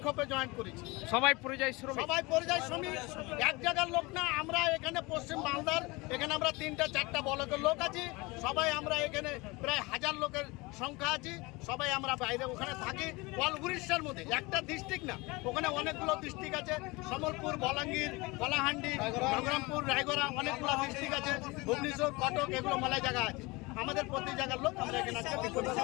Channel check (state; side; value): quieter; right; 24.2 dB